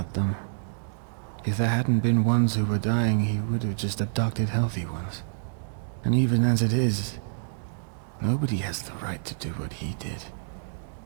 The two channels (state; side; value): silent; left; digital silence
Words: them. If there hadn't been ones who were dying, he would have just abducted healthy ones. And even as it is, nobody has the right to do what he did.